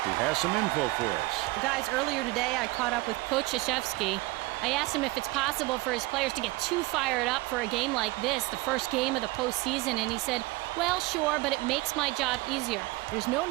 who has some info for us. Guys, earlier today I caught up with Coach Krzyzewski. I asked him if it's possible for his players to get too fired up for a game like this, the first game of the postseason, and he said, well, sure, but it makes my job easier. There's no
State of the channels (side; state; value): left; quieter; 21.5 dB